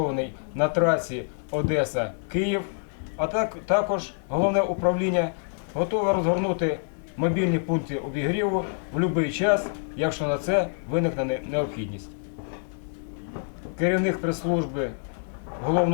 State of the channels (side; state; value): right; silent; digital silence